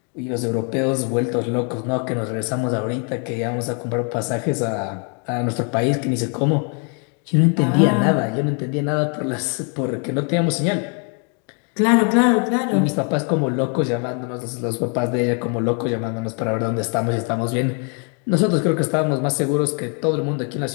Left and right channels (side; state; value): right; quieter; 39.0 dB